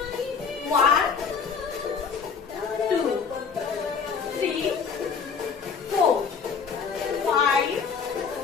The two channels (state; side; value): quieter; right; 6.0 dB